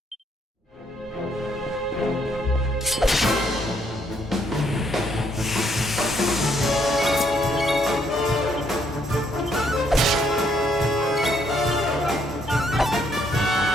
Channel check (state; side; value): normal; both; correlation 0.71